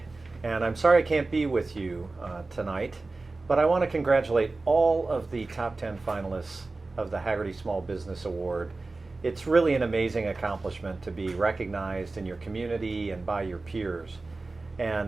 and I'm sorry I can't be with you tonight, but I want to congratulate all of the top 10 finalists of the Hagerty Small Business Award. It's really an amazing accomplishment to be recognized in your community and by your peers.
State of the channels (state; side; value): quieter; left; 3.4 dB